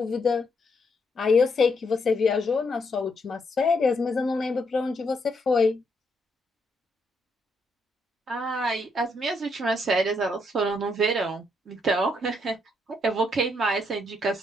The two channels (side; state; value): both; normal; correlation 0.76